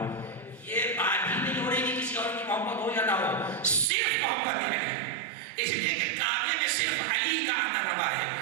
یہ بات ہی نہیں ہو رہی کہ کسی اور کی محبت ہو یا نہ ہو، صرف محبت ہی ہے، اس لیے کہ کعبے میں صرف علی کا آنا روا ہے،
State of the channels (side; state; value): left; drops out; at 3.9 s